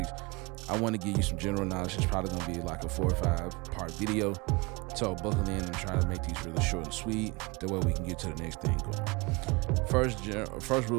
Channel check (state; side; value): quieter; left; 26.1 dB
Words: give you some general knowledge. It's probably going to be like a 4 or 5 part video. So buckle in and try to make these really short and sweet. That way we can get to the next thing going. First